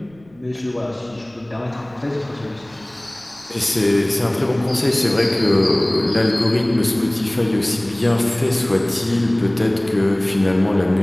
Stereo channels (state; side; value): noise; right; rumble, 28 dB below the sound